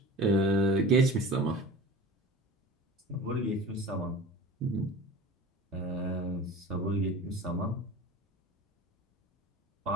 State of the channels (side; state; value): both; normal; correlation 0.38